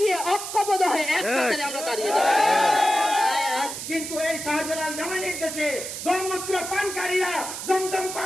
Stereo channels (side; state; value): right; noise; hiss, 7 dB below the sound